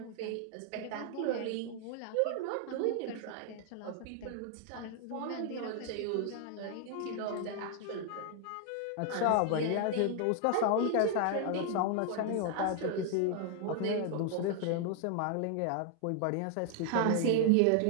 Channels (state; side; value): different; both; correlation 0.00